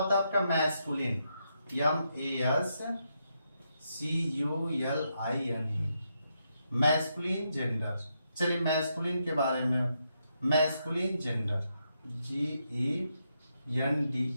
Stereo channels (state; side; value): inverted; both; correlation -0.81